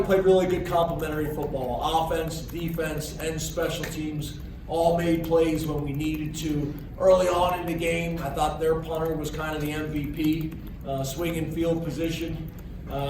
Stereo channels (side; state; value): both; identical; correlation 1.00